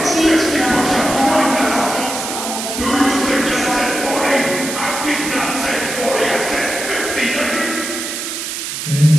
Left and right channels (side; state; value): right; noise; hiss, 5 dB below the sound